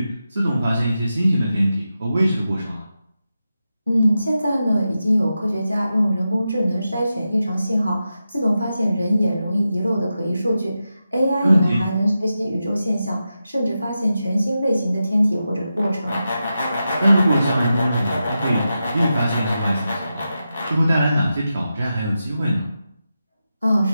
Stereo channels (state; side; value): inverted; both; correlation -0.90